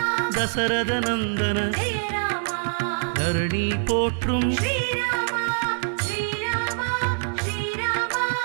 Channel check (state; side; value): silent; left; digital silence